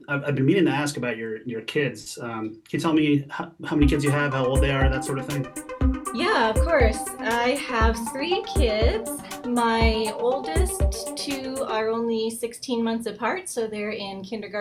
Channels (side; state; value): both; identical; correlation 1.00